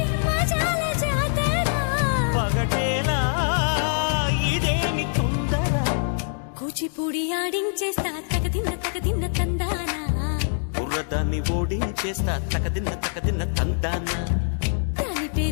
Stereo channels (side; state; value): right; silent; digital silence